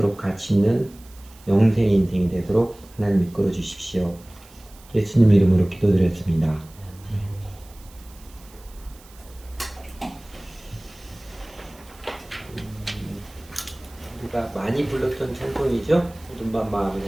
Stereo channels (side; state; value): right; noise; hiss, 24 dB below the sound